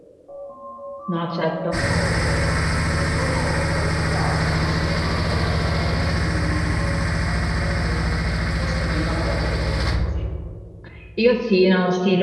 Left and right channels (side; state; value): both; identical; correlation 1.00